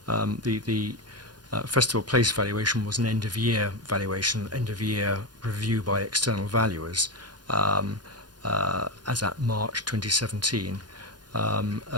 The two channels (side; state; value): left; late; 0.70 ms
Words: The Festival Place valuation was an end-of-year valuation, end-of-year review by external valuers as at March 2017.